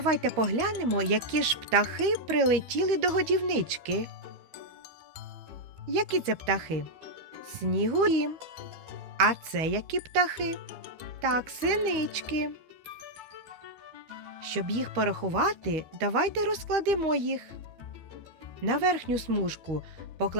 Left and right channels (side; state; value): left; late; 13 ms